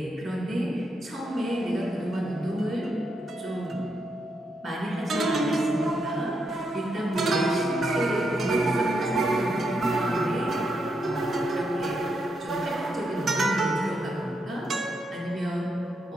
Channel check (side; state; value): both; normal; correlation 0.81